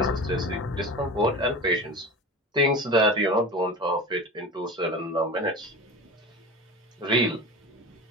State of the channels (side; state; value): both; normal; correlation 0.31